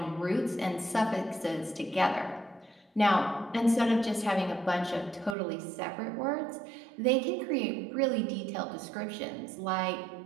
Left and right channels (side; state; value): left; drops out; at 5.4 s